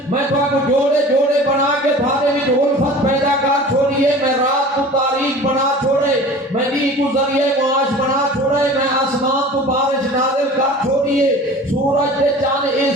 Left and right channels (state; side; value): normal; both; correlation 0.41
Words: میں تو آپ کو جوڑے جوڑے بنا کے تھارے بھی الفت پیدا کر چھوڑیے، میں رات کو تاریخ بنا چھوڑے، میں دی کو ذریعے معاش بنا چھوڑے، میں آسمان کو بارش نازل کر چھوڑیے، سورج دے چاند یہ